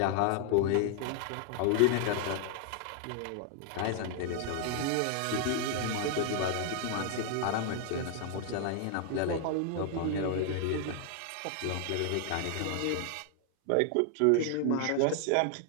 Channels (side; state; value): both; different; correlation 0.00